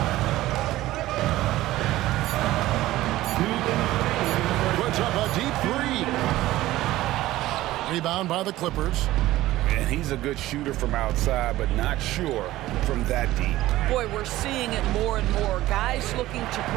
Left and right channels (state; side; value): quieter; left; 16.2 dB